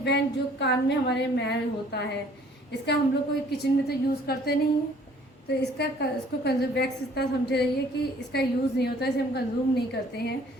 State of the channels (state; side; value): normal; both; correlation 0.57